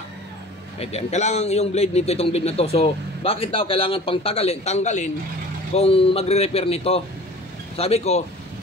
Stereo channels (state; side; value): normal; both; correlation 0.43